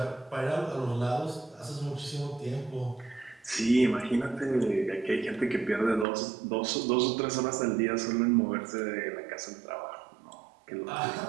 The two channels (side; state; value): left; drops out; at 6.1 s